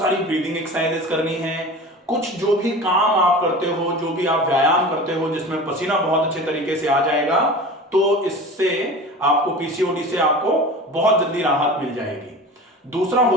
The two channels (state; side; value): normal; both; correlation 0.35